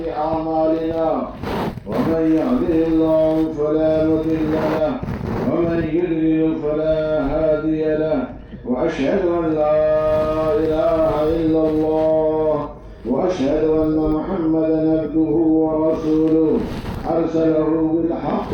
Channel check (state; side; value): identical; both; correlation 1.00